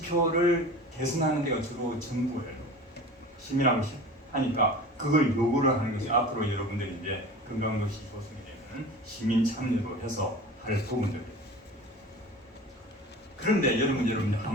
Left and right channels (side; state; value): both; normal; correlation 0.37